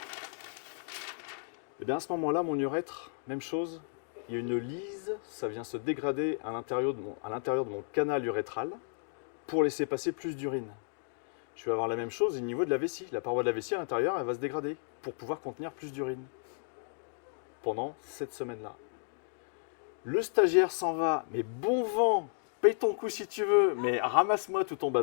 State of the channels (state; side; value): silent; right; digital silence